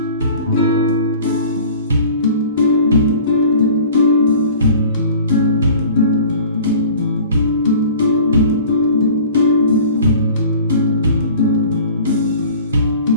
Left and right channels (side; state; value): both; inverted; correlation -0.45